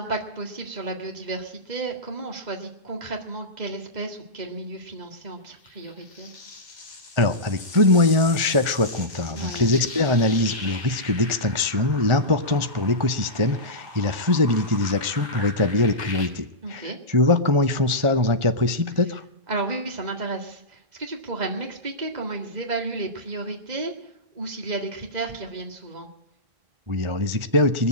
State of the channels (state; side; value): late; left; 1.4 ms